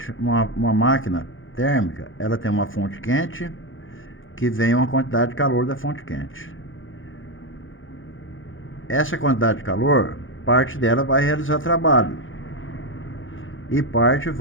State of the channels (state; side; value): late; right; 0.58 ms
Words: uma máquina térmica, ela tem uma fonte quente que vem uma quantidade de calor da fonte quente. Essa quantidade de calor, parte dela vai realizar trabalho e parte